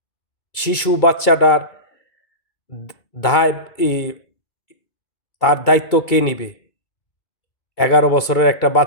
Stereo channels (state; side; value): late; right; 2.2 ms